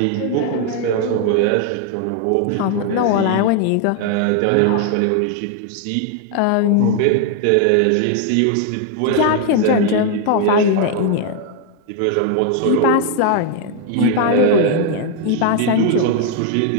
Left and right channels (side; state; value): both; different; correlation 0.00